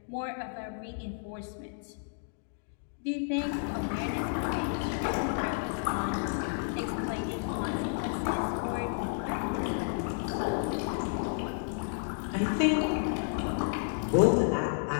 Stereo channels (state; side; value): silent; right; digital silence